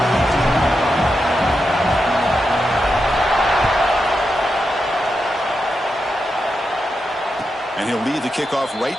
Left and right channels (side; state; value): both; normal; correlation 0.87